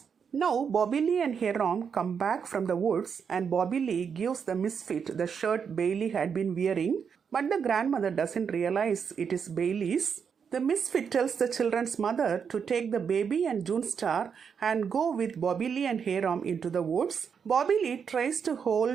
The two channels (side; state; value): left; quieter; 6.7 dB